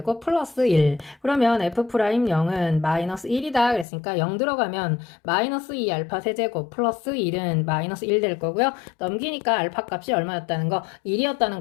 플러스 1. 그러면 f'0은 마이너스 1이다 그랬으니까 0 들어가면 마이너스 2 알파 세제곱 플러스 1은 마이너스 1 될 거고요. 넘기니까 알파 값이 얼마였다는 거? 1이었다는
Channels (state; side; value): drops out; right; at 3.9 s